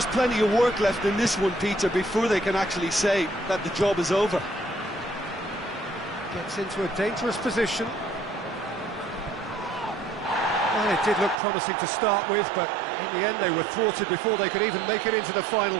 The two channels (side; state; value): left; drops out; at 11.4 s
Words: plenty of work left in this one, Peter, before they can actually say that the job is over. Gets into a dangerous position. Well, it did look promising to start with, but in the end they were thwarted before they could even make it into the final